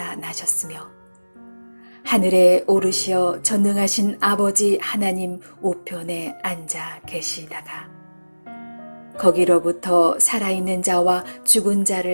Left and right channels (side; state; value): both; inverted; correlation -1.00